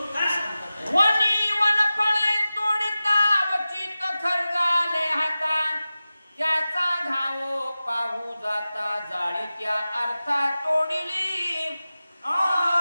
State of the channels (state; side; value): inverted; both; correlation -0.96